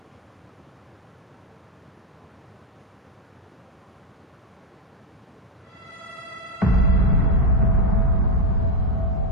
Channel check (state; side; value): normal; both; correlation 0.08